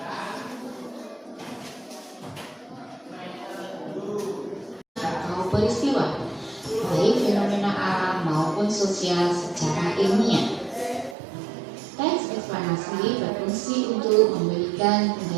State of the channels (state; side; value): drops out; left; at 11.2 s